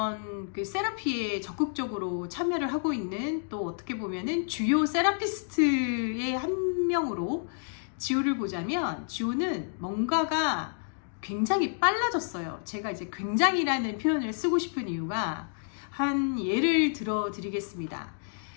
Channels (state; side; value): silent; right; digital silence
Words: 그 세라피에 적극적으로 참여를 하고 있는, 또 어떻게 보면은 주요 세라피스트의 한 명으로 지호를 보자면, 지호는 뭔가가 굉장히 빨라졌어요. 제가 이제 굉장히라는 표현을 쓰고 싶은 이유가, 한 예를 들어 드리겠습니다.